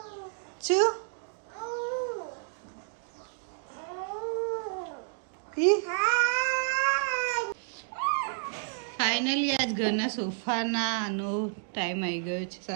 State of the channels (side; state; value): left; silent; 58 dB below the other